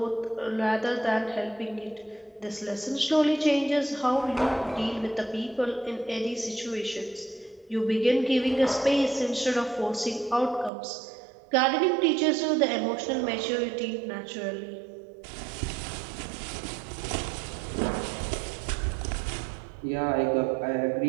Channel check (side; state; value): left; drops out; at 10.7 s